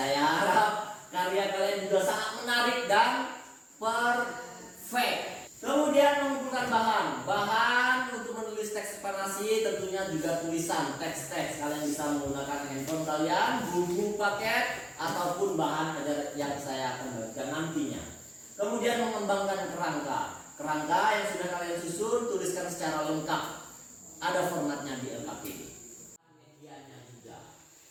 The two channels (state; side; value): identical; both; correlation 1.00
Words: harap karya kalian juga sangat menarik dan perfect. Kemudian mengumpulkan bahan untuk menulis teks eksplanasi, tentunya juga tulisan teks-teks. Kalian bisa menggunakan handphone kalian, buku paket ataupun bahan yang saya akan berikan nantinya. Kemudian mengembangkan kerangka yang sudah kalian susun, tuliskan secara lengkap. Ada formatnya di LKPD. Medianya juga.